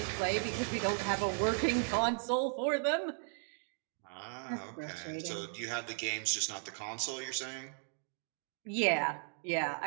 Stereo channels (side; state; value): left; silent; 54 dB below the other